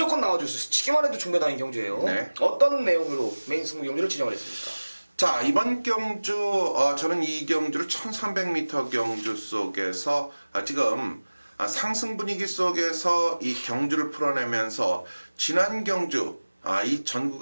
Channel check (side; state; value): both; inverted; correlation -1.00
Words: 나와줄 수 있어요. 치기만 해도 중배당인 경주예요. 네. 어떤 내용으로 메인 승부 경주를 진행을 했습니까? 자, 이번 경주 저는 이 경주를 1300m 경주 속에서 지금 상승 분위기 속에서 이 경주를 풀어내면서 지난 경주 이 전